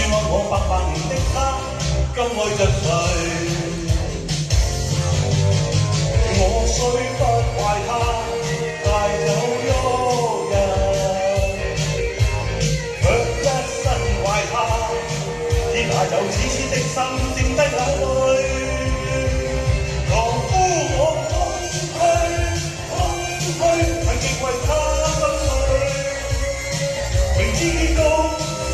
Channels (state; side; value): identical; both; correlation 1.00